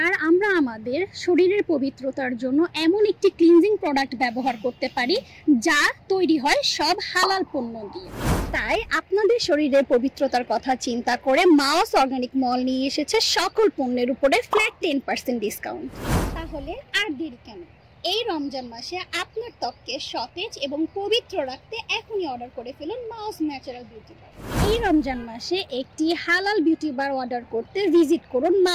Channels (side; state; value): both; identical; correlation 1.00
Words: আর আমরা আমাদের শরীরের পবিত্রতার জন্য এমন একটি ক্লিনজিং প্রোডাক্ট ব্যবহার করতে পারি যা তৈরি হয় সব হালাল পণ্য দিয়ে। তাই আপনাদের শরীরের পবিত্রতার কথা চিন্তা করে মাওস অর্গানিক মল নিয়ে এসেছে সকল পণ্যের উপরে ফ্ল্যাট 10% ডিসকাউন্ট। তাহলে আর দেরি কেন? এই রমজান মাসে আপনার ত্বককে সতেজ এবং পবিত্র রাখতে এখনই অর্ডার করে ফেলুন মাওস ন্যাচারাল বিউটি বার। এই রমজান মাসে একটি হালাল বিউটি বার অর্ডার করতে ভিজিট করুন